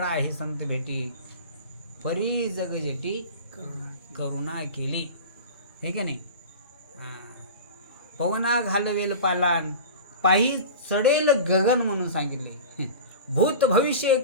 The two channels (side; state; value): both; inverted; correlation -0.33